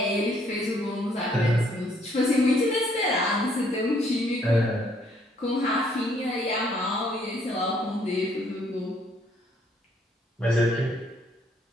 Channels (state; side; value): normal; both; correlation 0.66